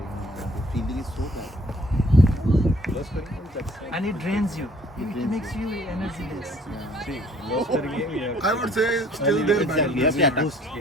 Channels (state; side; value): normal; both; correlation 0.58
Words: the feeling is so bad. And it drains you. It drains makes you energyless. I would say still they're better. Exactly. You have to attack. Boost, yeah.